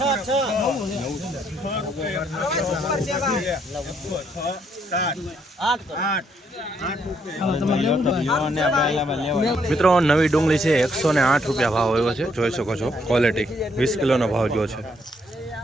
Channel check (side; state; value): both; normal; correlation 0.72